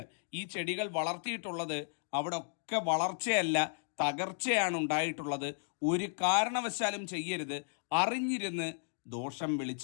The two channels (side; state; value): right; silent; digital silence